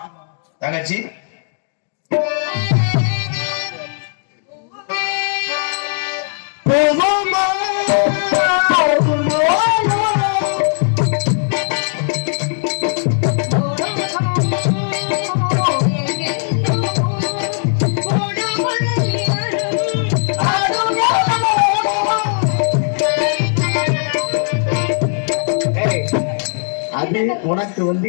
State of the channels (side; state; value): right; silent; digital silence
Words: தங்கச்சி அது உனக்கு வந்து